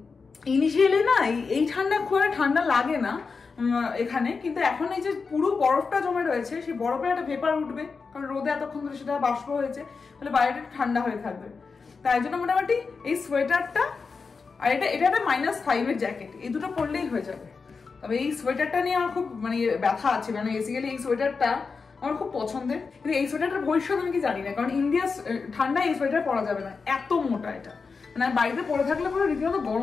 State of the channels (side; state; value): right; quieter; 4.8 dB